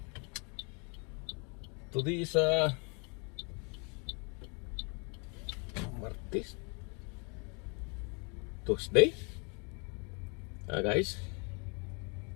Today is Martes, Tuesday. Guys.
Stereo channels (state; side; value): quieter; right; 34.3 dB